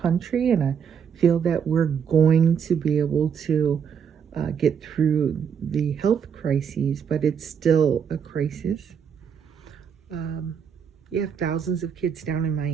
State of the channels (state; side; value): quieter; left; 7.4 dB